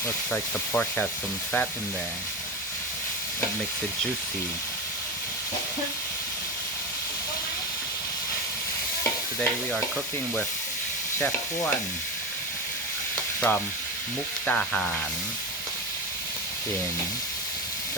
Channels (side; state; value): both; normal; correlation 0.20